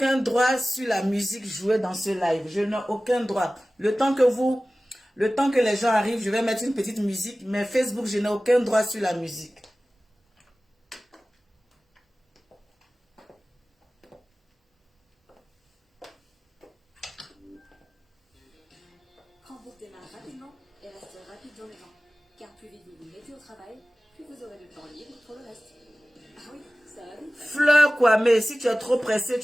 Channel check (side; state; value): both; normal; correlation 0.97